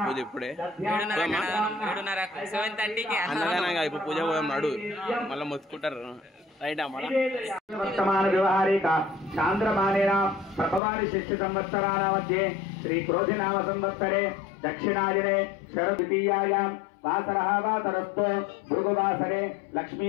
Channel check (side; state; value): right; drops out; at 10.8 s